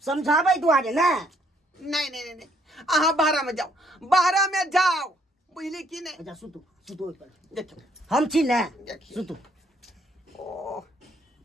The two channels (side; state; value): both; normal; correlation 0.68